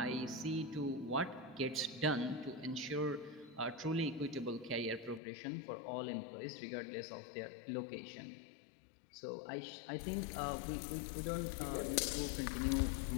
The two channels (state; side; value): drops out; right; at 5.2 s